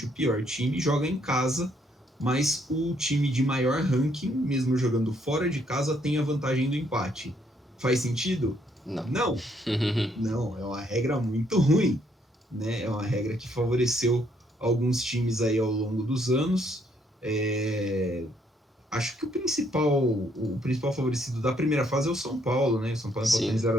o pior time, joga em casa, mas o time de maior ranking, mesmo jogando fora de casa, tem a vantagem do empate. Faz sentido? Não. Não, não, é uma regra muito ruim, né? É uma regra que favoreceu alguns times aí ao longo dos anos. Acho que o principal favorecido da primeira fase é o São Paulo, né? O São Paulo empatou em Sim.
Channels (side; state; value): both; normal; correlation 0.70